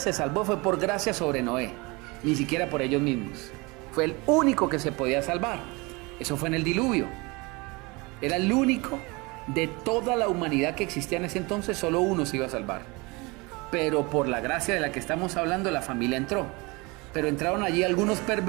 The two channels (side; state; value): left; quieter; 25.8 dB